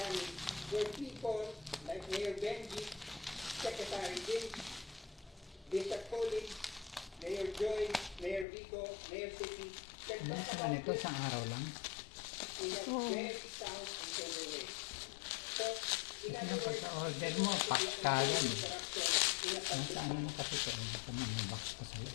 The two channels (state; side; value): drops out; right; at 8.5 s